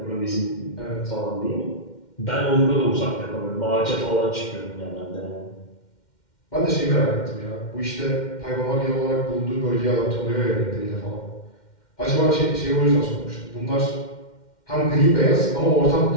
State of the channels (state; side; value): late; right; 2.1 ms